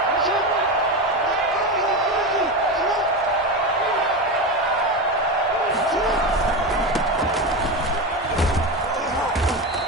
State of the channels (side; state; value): both; normal; correlation 0.18